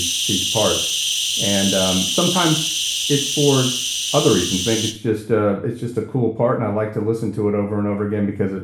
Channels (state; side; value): identical; both; correlation 1.00